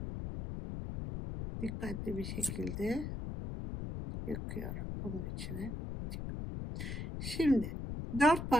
Dikkatli bir şekilde yakıyorum bunun içine. Şimdi 4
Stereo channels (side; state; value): left; noise; rumble, 5 dB below the sound